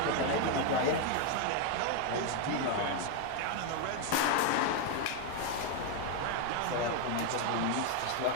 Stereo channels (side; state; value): both; different; correlation 0.01